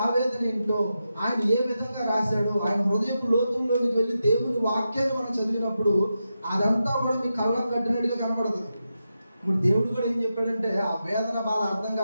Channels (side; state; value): both; inverted; correlation -0.88